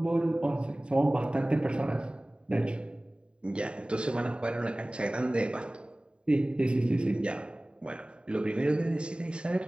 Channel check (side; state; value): left; late; 0.052 ms